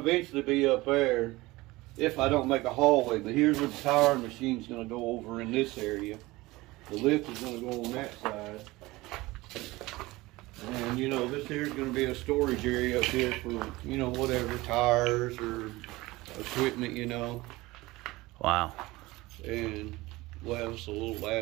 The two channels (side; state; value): left; quieter; 20.3 dB